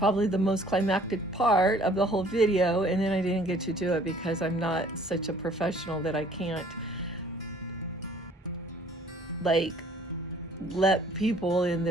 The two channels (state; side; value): normal; both; correlation 0.56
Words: the most climactic part of the whole video, and then I didn't get to do it because I'm not such a professional that I can't, like, let people in